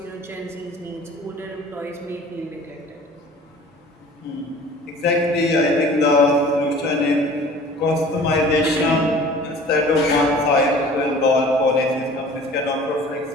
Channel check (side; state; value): both; normal; correlation 0.46